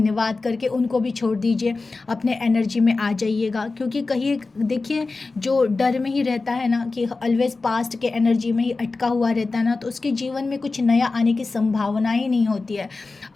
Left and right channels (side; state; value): right; quieter; 3.7 dB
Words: करके उनको भी छोड़ दीजिए, अपने एनर्जी में आ जाइएगा। क्योंकि कहीं देखिए जो डर में ही रहता है ना, कि ऑलवेज पास्ट के एनर्जी में ही अटका हुआ रहता है ना, तो उसके जीवन में कुछ नया आने की संभावना ही नहीं होती है।